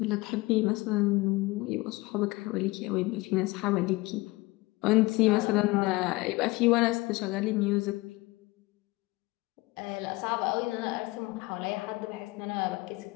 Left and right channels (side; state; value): right; quieter; 21.8 dB